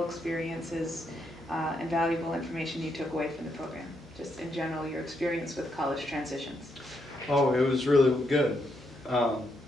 experiences, and valuable information you took away from the program. Just in general, your experience with College Transitions. Oh, it was really good.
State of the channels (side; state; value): both; normal; correlation 0.79